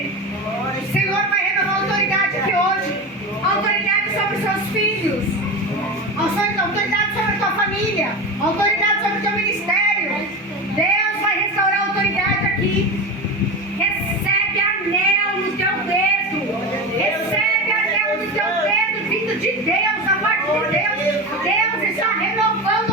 o Senhor vai renovar autoridade aqui hoje. Autoridade sobre os seus filhos, autoridade sobre a tua família, autoridade sobre o teu ministério. Deus vai restaurar a autoridade aqui. Recebe anel no teu dedo. Recebe anel no teu dedo, vindo de Deus, da parte de Deus. Deus está renovando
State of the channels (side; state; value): both; normal; correlation 0.24